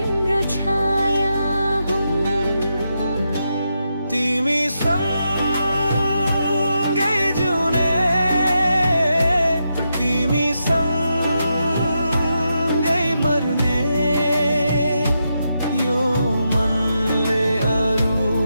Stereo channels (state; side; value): inverted; both; correlation -0.85